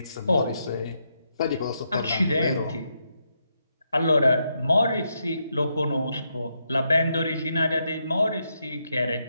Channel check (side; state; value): both; inverted; correlation -0.81